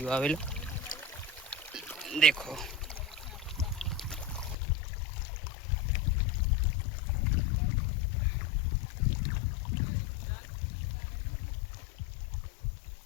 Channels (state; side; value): drops out; right; at 4.5 s